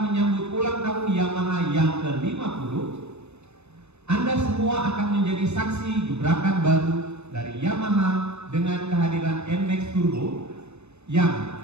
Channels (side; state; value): left; late; 0.81 ms